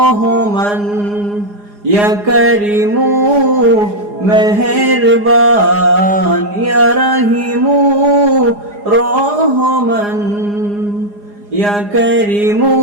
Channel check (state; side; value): late; left; 4.9 ms